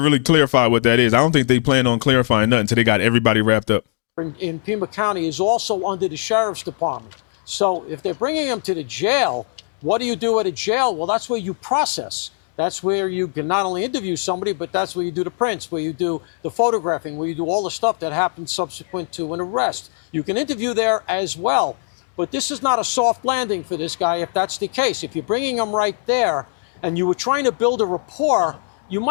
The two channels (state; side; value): silent; right; digital silence